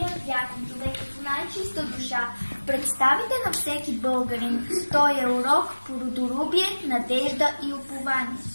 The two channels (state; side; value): inverted; both; correlation -1.00